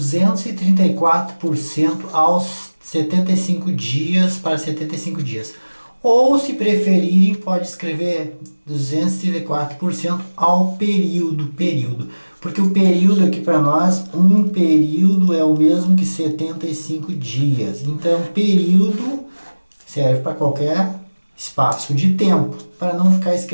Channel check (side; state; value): both; inverted; correlation -1.00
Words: aos 75 dias para 75 dias. Ou, se preferirem, pode escrever 234% ao período. Porque o período aqui para nós, um período é o mesmo que 75 dias. Então, período serve para qualquer espaço de tempo, para não ficar